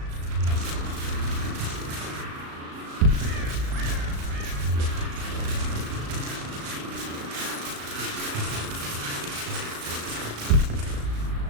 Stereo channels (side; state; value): left; late; 36 ms